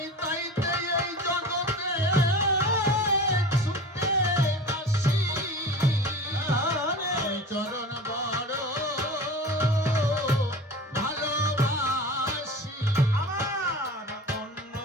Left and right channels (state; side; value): normal; both; correlation 0.35